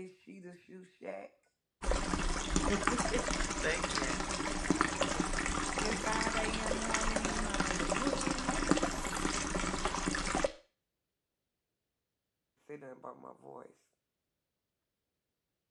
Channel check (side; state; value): both; identical; correlation 1.00